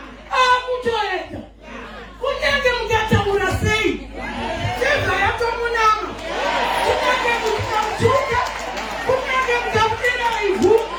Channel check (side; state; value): both; identical; correlation 1.00